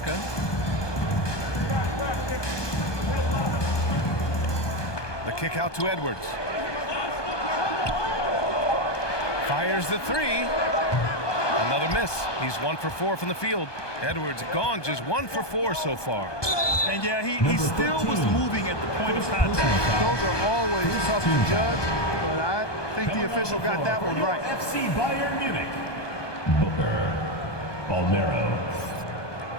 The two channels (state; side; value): late; right; 1.2 ms